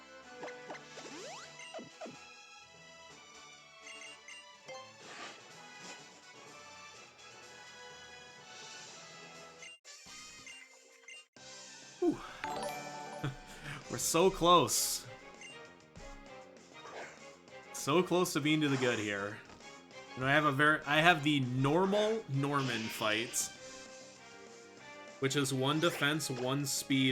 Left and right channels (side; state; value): both; identical; correlation 1.00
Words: Whew. We're so close. So close to being to the good here. You know, I have the normal Norman fight, which is 1 defense, 1